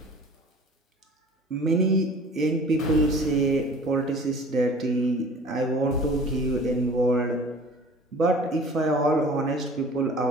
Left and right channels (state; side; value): normal; both; correlation 0.45